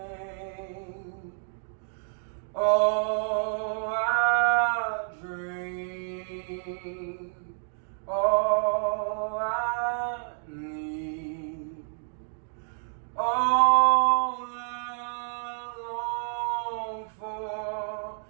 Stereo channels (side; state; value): left; silent; digital silence